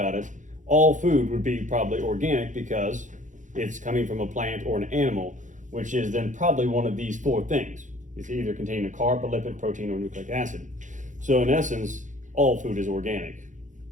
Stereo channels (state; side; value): late; left; 0.36 ms